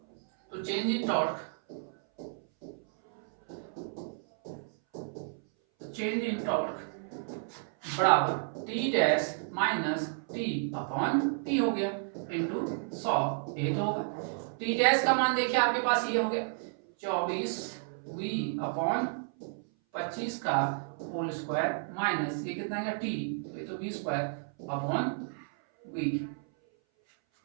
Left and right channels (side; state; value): left; silent; 57 dB below the other